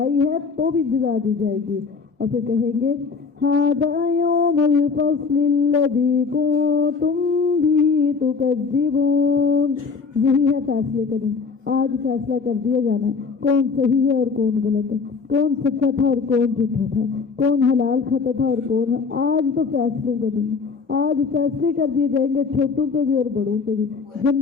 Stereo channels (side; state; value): right; quieter; 5.0 dB